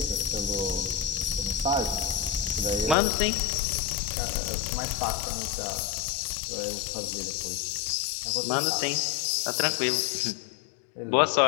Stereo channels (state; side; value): drops out; right; at 3.0 s